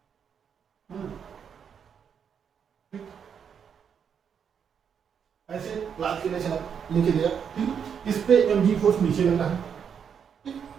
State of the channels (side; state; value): left; quieter; 7.4 dB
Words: ऐसे लाद के ले चला, लेके गया, ठीक, इस पे mg फोर्स नीचे लगा है, ठीक,